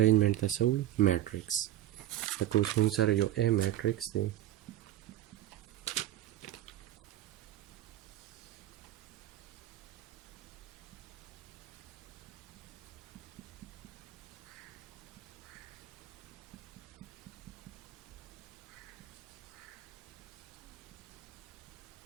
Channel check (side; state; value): left; quieter; 13.1 dB